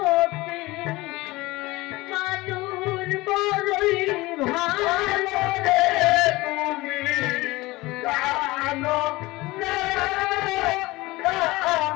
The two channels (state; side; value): quieter; right; 20.6 dB